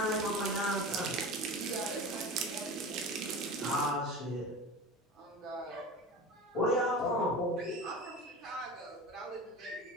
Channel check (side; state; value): both; normal; correlation 0.31